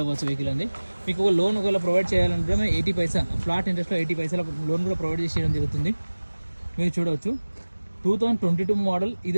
అవ్వచ్చు వెహికల్ అండి. మీకు ఒక లోన్ ఒకవేళ ప్రొవైడ్ చేయాలంటే 80 పైసా ఫ్లాట్ ఇంట్రెస్ట్లో 80 పైసల లోన్ కూడా ప్రొవైడ్ చేయడం జరుగుతుంది. మీరు చూడవచ్చు, 2022 మోడల్. ఇది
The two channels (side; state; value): both; inverted; correlation -1.00